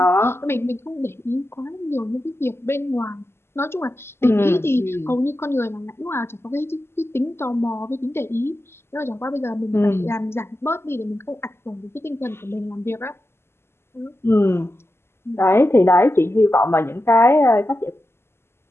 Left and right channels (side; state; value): right; late; 0.12 ms